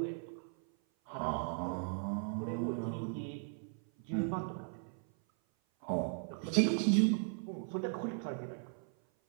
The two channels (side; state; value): left; silent; 53 dB below the other